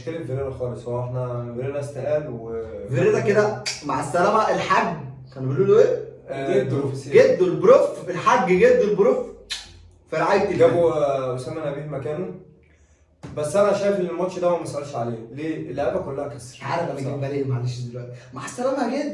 فيريرا خالص، هو احنا فيريرا استقال فيريرا كده مع السلامة. الحاج كانوا بيقولوا له ايه؟ جدو البروف، الحاج جدو البروف في رعاية الله. جابوا اسامه نبيه مكانه. بس انا شايف ان الماتش ده ما مسألش عليه، ليه؟ اللعيبه كلها كسر. عارف انا جايبها ليه؟ معلش دلوقتي. مع السلامة يا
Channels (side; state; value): both; identical; correlation 1.00